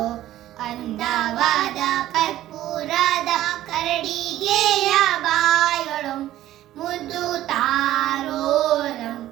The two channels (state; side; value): quieter; left; 13.9 dB